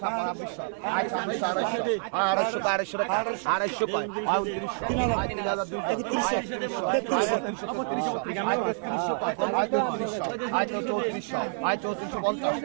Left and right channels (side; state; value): left; silent; 57 dB below the other